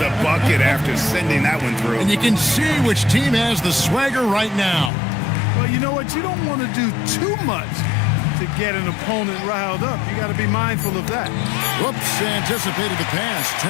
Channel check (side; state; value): right; drops out; at 4.9 s